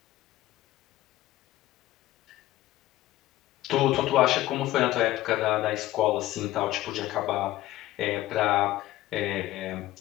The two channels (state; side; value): quieter; right; 15.7 dB